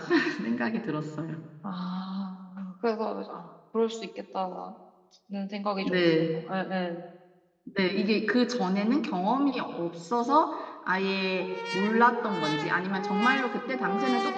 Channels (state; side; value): identical; both; correlation 1.00